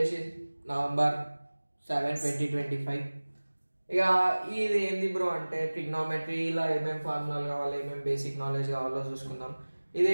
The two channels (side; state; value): both; inverted; correlation -1.00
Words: నవంబర్ 7, 2025. ఇక ఇది ఏంది బ్రో అంటే ట్రిగ్నోమెట్రీలో ఏమేమి ఫార్ములాలు కావాలి, ఏమేమి బేసిక్ నాలెడ్జ్ కావాలో చూసుకుందాం. ఇది